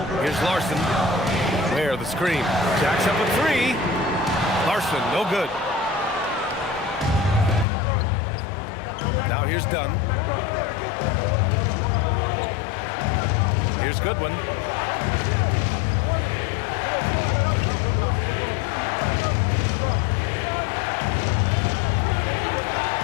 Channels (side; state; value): right; drops out; at 7.7 s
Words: Here's Larson. Ware, the screen. Jacks up a 3. Larson, no good. Now here's Dunn. Here's Goodwin.